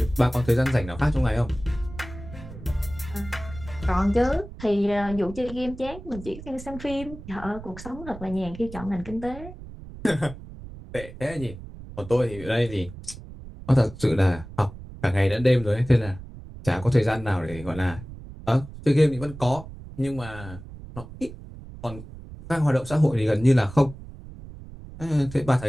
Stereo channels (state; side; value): noise; right; rumble, 14 dB below the sound